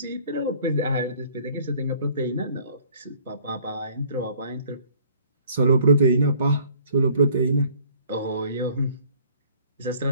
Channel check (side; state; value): both; inverted; correlation -0.56